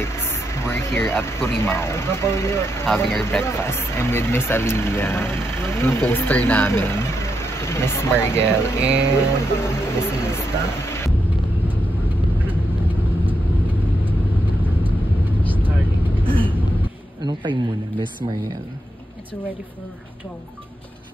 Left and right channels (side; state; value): both; normal; correlation 0.83